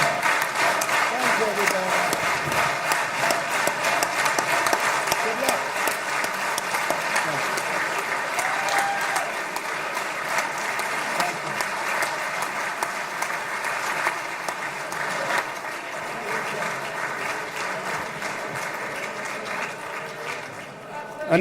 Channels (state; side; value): identical; both; correlation 1.00